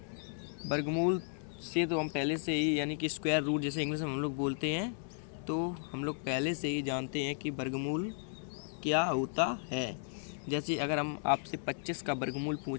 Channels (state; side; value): silent; right; digital silence